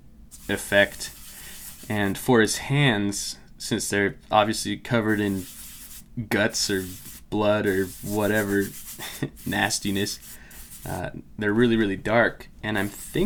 effect. And for his hands, since they're obviously covered in guts or blood or whatever nastiness, they're really, really dark. And I'm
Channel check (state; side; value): identical; both; correlation 1.00